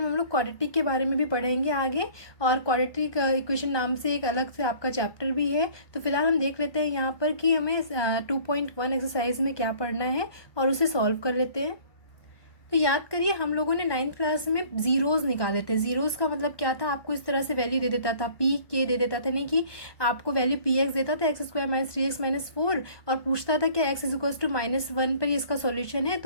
हम लोग क्वाड्रेटिक के बारे में भी पढ़ेंगे आगे, और क्वाड्रेटिक इक्वेशन नाम से एक अलग से आपका चैप्टर भी है। तो फिलहाल हम देख लेते हैं यहाँ पर कि हमें 2.1 एक्सरसाइज में क्या पढ़ना है और उसे सॉल्व कर लेते हैं। तो याद करिए, हम लोगों ने 9th क्लास में जीरोस निकाले थे। जीरोस का मतलब क्या था, आपको इस तरह से वैल्यू दे देता था, पी के दे देता था, नहीं कि आपको वैल्यू पी एक्स देता था x² - 3x - 4, और पूछता था कि x = -1 पर इसका सॉल्यूशन है।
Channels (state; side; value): late; right; 1.2 ms